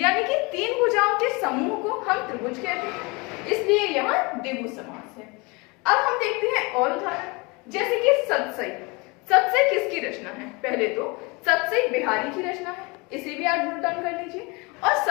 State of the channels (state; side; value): quieter; right; 27.3 dB